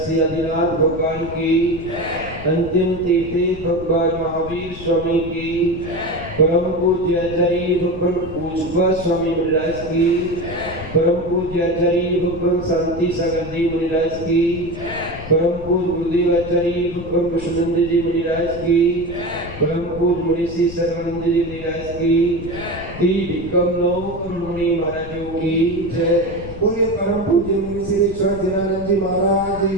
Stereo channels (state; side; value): noise; left; rumble, 12 dB below the sound